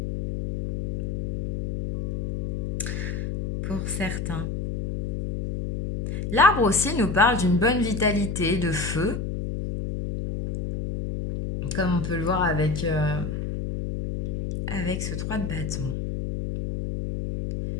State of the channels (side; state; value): left; noise; hum, 3 dB below the sound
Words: Pour certains. L'arbre aussi nous parle d'une bonne vitalité, de feu, comme on peut le voir avec ce 3 de bâton.